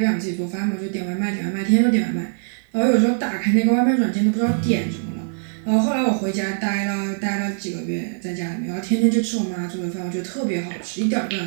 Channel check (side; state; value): left; silent; digital silence